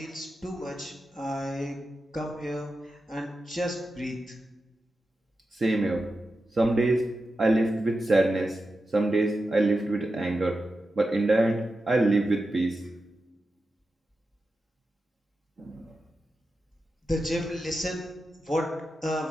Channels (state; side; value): normal; both; correlation 0.90